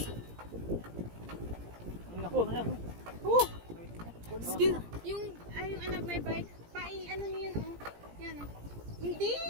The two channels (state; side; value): late; left; 17 ms